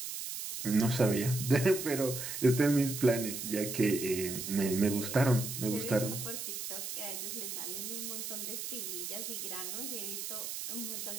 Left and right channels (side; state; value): right; noise; hiss, 6 dB below the sound